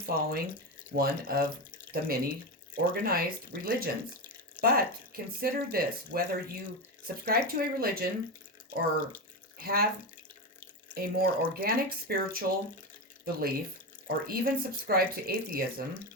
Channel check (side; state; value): both; normal; correlation 0.16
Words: one of the many organized religions. But consider this: whether you subscribe to a religion or have a more organic spiritual belief, or even subscribe to atheism,